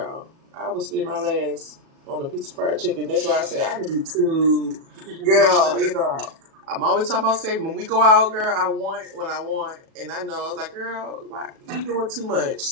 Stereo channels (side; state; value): left; late; 37 ms